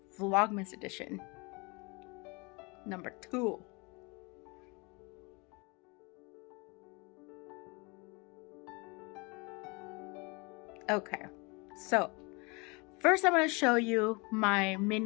Vlogmas edition, number 2. Okay, so first I'm going to show you my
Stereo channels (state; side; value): quieter; right; 28.8 dB